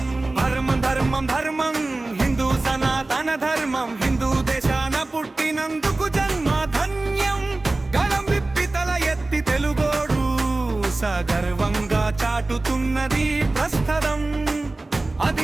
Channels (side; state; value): left; quieter; 3.0 dB